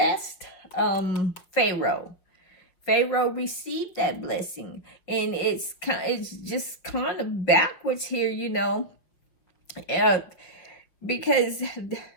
Pharaoh. Pharaoh received that blessing, and it's just kind of backwards here, because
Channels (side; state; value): right; late; 5.7 ms